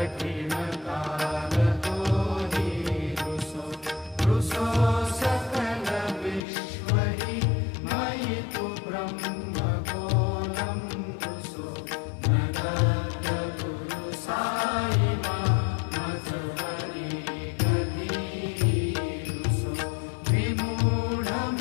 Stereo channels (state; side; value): drops out; right; at 6.5 s